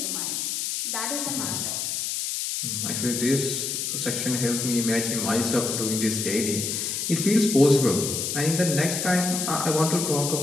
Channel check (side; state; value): left; noise; hiss, 2 dB below the sound